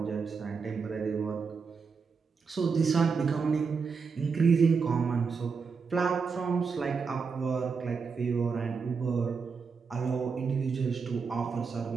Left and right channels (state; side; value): quieter; left; 5.3 dB